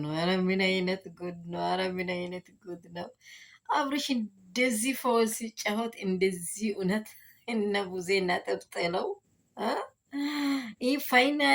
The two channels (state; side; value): identical; both; correlation 1.00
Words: ነው! ኧረ ምን አይነት ጉድ ነው! ኧረ ምን አይነት ጉድ ነው! አብርሽ እንደዚህ ፈውስ ሲጫወት እንደዚህ እውነት እነ ቡዜ ነጥብ ጥለው ይህ